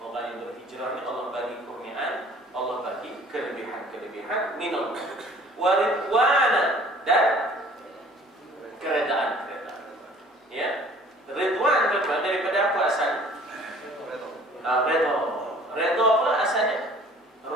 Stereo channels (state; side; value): normal; both; correlation 0.51